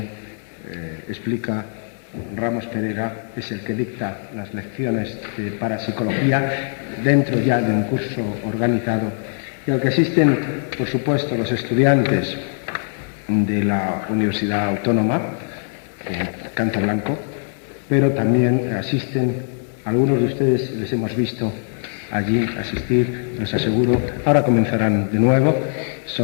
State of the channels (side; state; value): right; silent; 65 dB below the other